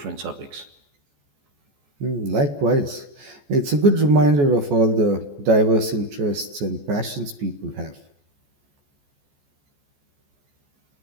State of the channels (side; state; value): left; late; 14 ms